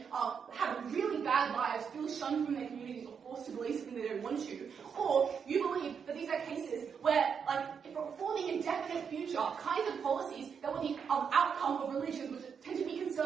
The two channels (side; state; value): left; quieter; 6.7 dB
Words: have really bad lives, feel shunned from their communities, or forced to believe something they don't want to, or you believe that these are cases where, for the indefinite future, kinds of policies that were the outcome of religions, which tend to be